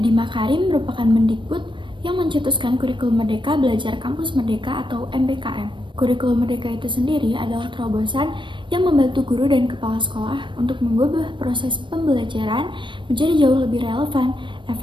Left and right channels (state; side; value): late; left; 0.23 ms